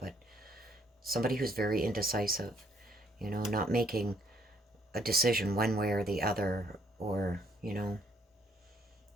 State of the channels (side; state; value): both; normal; correlation 0.67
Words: somebody who's very indecisive, you know, not making a decision one way or the other, or, you know,